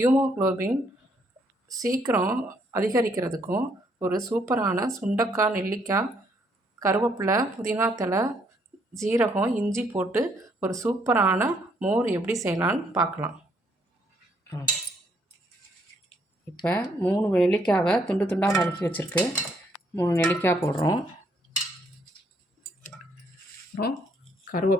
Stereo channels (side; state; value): both; normal; correlation 0.70